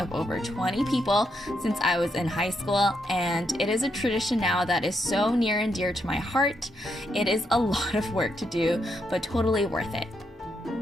over 20 people since I was in high school, and it is a tradition now that is so near and dear to my heart. It is a lot of work to do, but totally worth it.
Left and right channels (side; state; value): both; normal; correlation 0.79